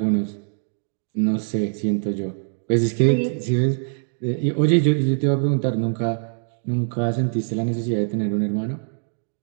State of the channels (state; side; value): silent; left; digital silence